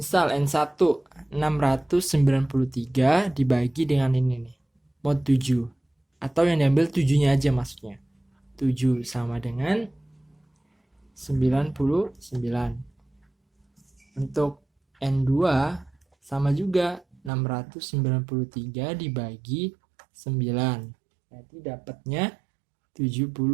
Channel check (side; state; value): left; drops out; at 17.3 s